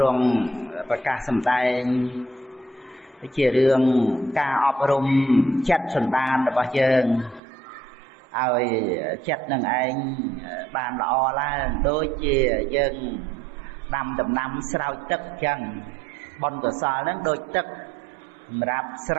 រង់ប្រកាសសម្ដែងជារឿងការអប់រំចិត្តសន្តានរបស់យើងឲ្យចិត្តនឹងឯងបានល្អឡើងដូចជាយើងដាំដំណាំស្រោចទឹកអញ្ចឹងបុណ្យកុសលហ្នឹងដូចទឹកសម្រាប់ស្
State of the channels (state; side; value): drops out; left; at 7.4 s